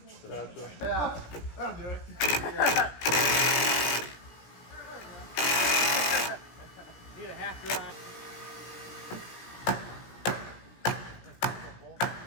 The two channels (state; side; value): late; right; 17 ms